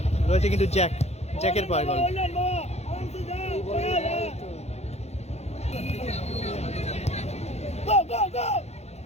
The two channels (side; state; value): right; late; 0.31 ms